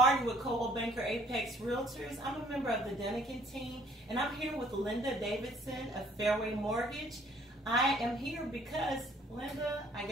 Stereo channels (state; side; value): normal; both; correlation 0.59